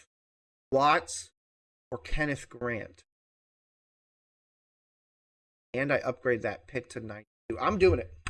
Watts or Kenneth Grant. And I upgrade that pick to 92. I'm doing it.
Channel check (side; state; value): both; identical; correlation 1.00